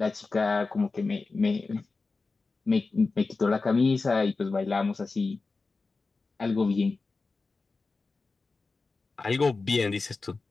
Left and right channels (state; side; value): quieter; right; 3.9 dB